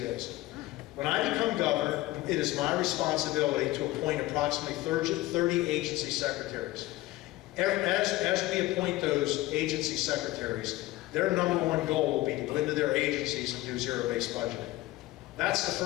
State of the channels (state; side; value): quieter; right; 17.9 dB